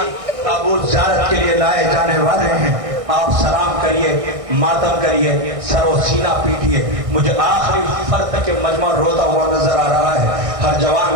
تابوت زیارت کے لیے لائے جانے والے ہیں. آپ سلام کریے, ماتم کریے, سر و سینہ پیٹیے. مجھے آخری فرد کے مجمع روتا ہوا نظر آ رہا ہے. ہر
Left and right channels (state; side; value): late; left; 1.6 ms